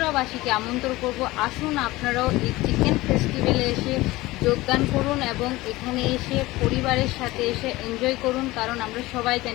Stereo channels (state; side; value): quieter; right; 19.4 dB